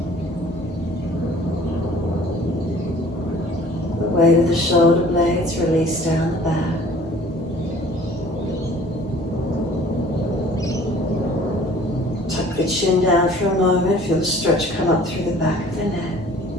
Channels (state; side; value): normal; both; correlation 0.51